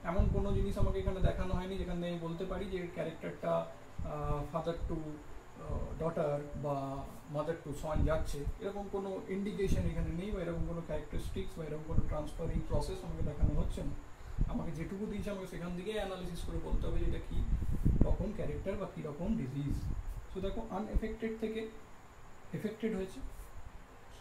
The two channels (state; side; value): identical; both; correlation 1.00